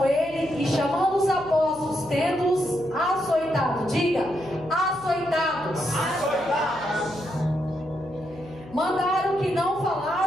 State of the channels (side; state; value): left; noise; hum, 19 dB below the sound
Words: ele, e chamando os apóstolos, tendo-os açoitado, diga, açoitados, mandaram que não